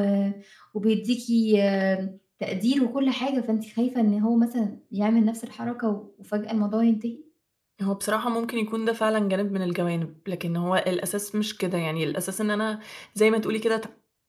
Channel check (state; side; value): identical; both; correlation 1.00